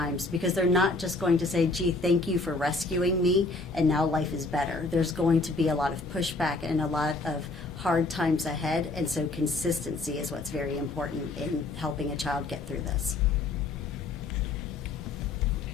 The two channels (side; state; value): right; quieter; 3.3 dB